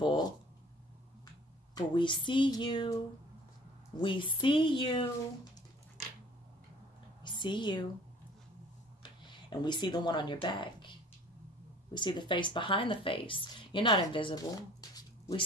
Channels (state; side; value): normal; both; correlation 0.49